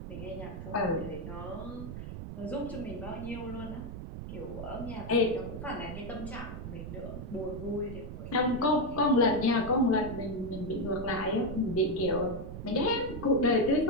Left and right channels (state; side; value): noise; right; rumble, 8 dB below the sound